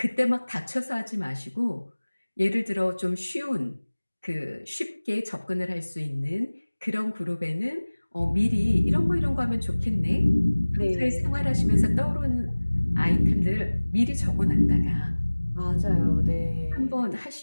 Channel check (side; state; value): both; inverted; correlation -1.00